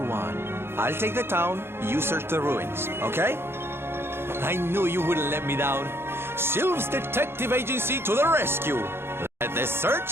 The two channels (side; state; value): left; late; 0.11 ms